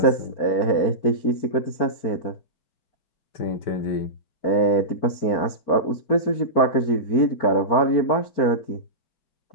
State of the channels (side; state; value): right; late; 4.5 ms